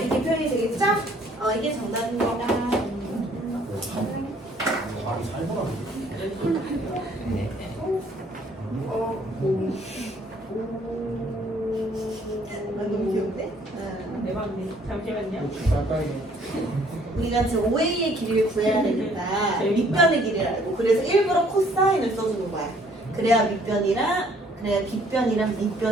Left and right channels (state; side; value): normal; both; correlation 0.61